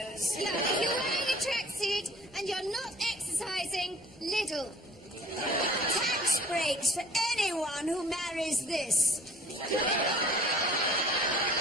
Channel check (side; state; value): both; normal; correlation 0.50